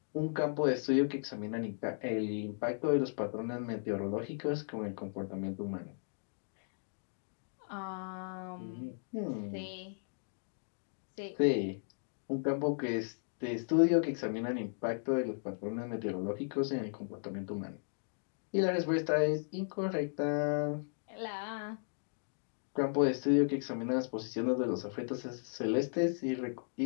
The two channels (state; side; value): silent; right; digital silence